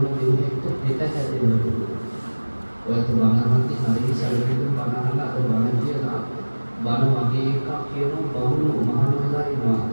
දෙයකට පිට හැදෙනවා. ඔයත් බණහන්ති හරි සැලකෙන්න බණහන අද බණ කියලා බණ වගේ එකක් කියන බමුණු මහානලා ඉන්නවා.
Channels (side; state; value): both; inverted; correlation -1.00